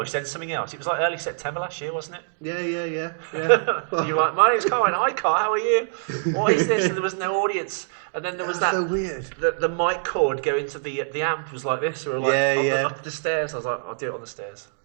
then something else. It was like early September last year, wasn't it? Yeah. You're like, my name's Colin. Hi, Carl. How are you? What is this? And there was no audience. And then there was that. So weird. The mic cord going to the amp was like this, or like up the stairs. I was like, I'll do it on the stairs.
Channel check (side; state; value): left; silent; digital silence